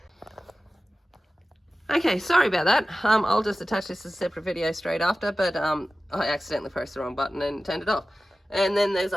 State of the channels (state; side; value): normal; both; correlation 0.95